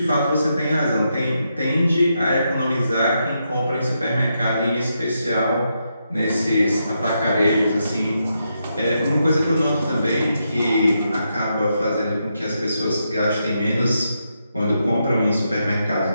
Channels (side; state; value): both; inverted; correlation -0.82